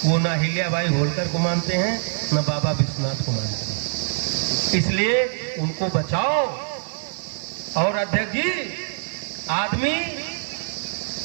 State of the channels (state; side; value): silent; left; 63 dB below the other